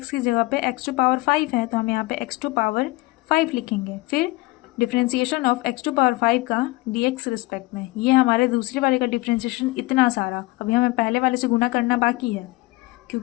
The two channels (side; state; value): right; quieter; 21.4 dB